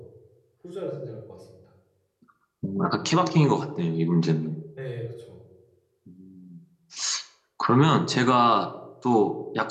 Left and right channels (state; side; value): identical; both; correlation 1.00